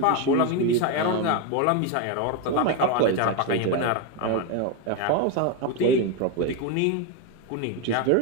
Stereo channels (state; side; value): different; both; correlation 0.02